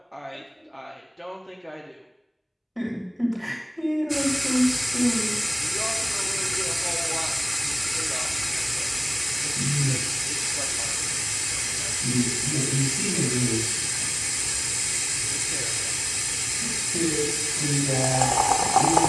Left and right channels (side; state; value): both; identical; correlation 1.00